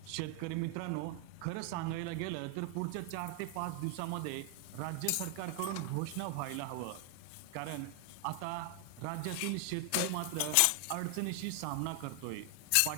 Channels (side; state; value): both; different; correlation 0.00